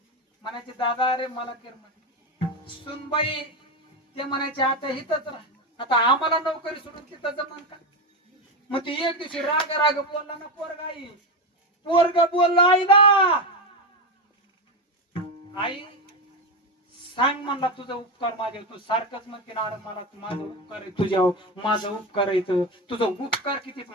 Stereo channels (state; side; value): normal; both; correlation 0.14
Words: दादा अरे मला कर म्हणे. सुनबाई ते म्हणायचे आता इथंच राहा. आता आम्हाला नोकरी सोडून तिथं जमान का? मग ती एक दिवशी राग बोलला ना पोरग बोलला आईला, आई सांग म्हणला तुझा उपकार माझ्या. तू सारखंच म्हणते ना, अरे मला माझा उपकार आहे तुझ्यावर, माझा उपकार आहे तुझा उपकार किती